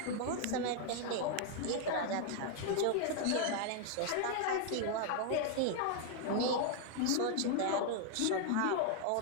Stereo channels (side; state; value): both; different; correlation 0.00